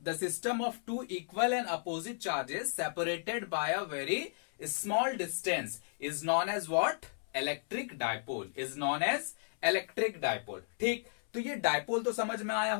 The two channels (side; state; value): right; silent; 55 dB below the other